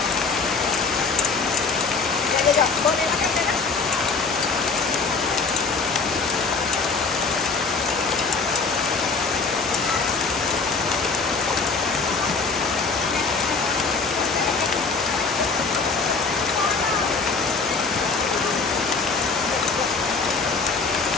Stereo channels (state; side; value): quieter; right; 4.6 dB